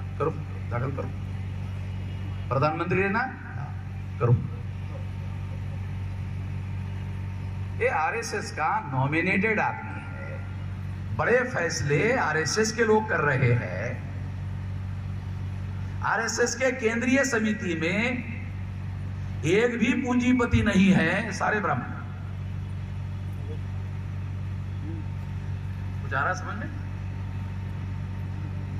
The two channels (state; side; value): identical; both; correlation 1.00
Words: करो, दाखिल करो, प्रधानमंत्री ने ना करो। ये आरएसएस का नॉमिनेटेड आदमी है, बड़े फैसले आरएसएस के लोग कर रहे हैं। आरएसएस के केंद्रीय समिति में एक भी पूंजीपति नहीं है, सारे ब्राह्मण। कुछ आ रहा समझ में?